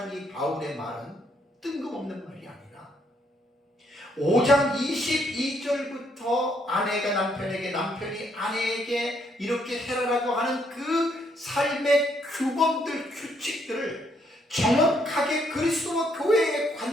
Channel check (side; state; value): both; normal; correlation 0.71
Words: 이 바울의 말은 뜬금없는 말이 아니라 5장 22절부터 아내가 남편에게, 남편이 아내에게 이렇게 해라라고 하는 그 삶의 규범들, 규칙들을 정확하게 그리스도와 교회의